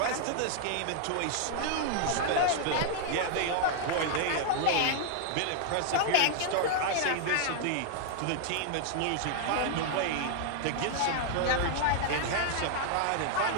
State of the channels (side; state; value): both; different; correlation 0.00